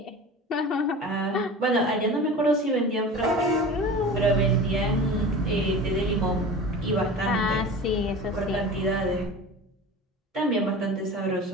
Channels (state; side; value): normal; both; correlation 0.35